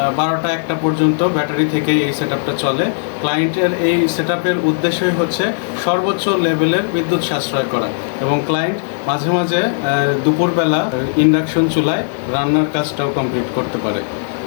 12টা-1টা পর্যন্ত ব্যাটারি থেকেই এই সেটআপটা চলে। ক্লায়েন্টের এই সেটআপের উদ্দেশ্যই হচ্ছে সর্বোচ্চ লেভেলের বিদ্যুৎ সাশ্রয় করা এবং ক্লায়েন্ট মাঝে মাঝে দুপুরবেলা ইন্ডাকশন চুলায় রান্নার কাজটাও কমপ্লিট করতে পারে।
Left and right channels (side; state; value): right; silent; digital silence